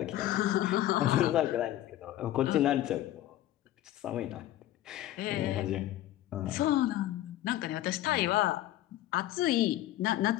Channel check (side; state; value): right; quieter; 14.0 dB